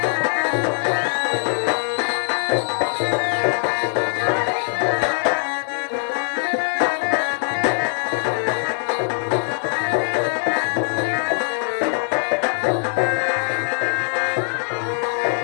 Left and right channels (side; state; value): right; silent; 64 dB below the other